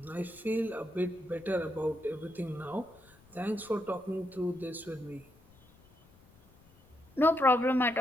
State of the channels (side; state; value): left; noise; rumble, 28 dB below the sound